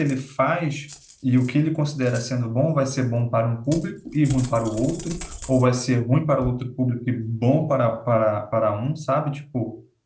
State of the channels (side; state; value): both; identical; correlation 1.00